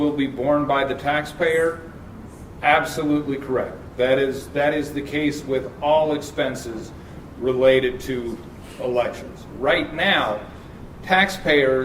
be borne by the taxpayer, absolutely correct. That is the case with all expenses related to elections. Right now,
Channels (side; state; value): both; identical; correlation 1.00